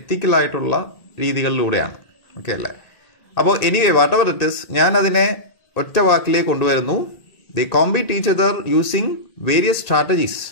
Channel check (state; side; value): late; right; 1.9 ms